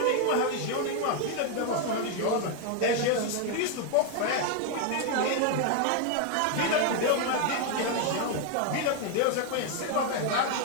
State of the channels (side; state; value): both; different; correlation 0.00